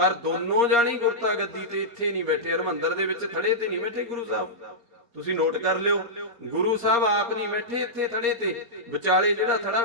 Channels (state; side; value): late; left; 4.2 ms